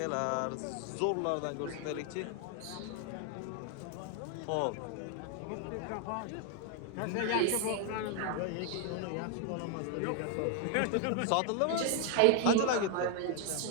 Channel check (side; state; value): both; different; correlation 0.01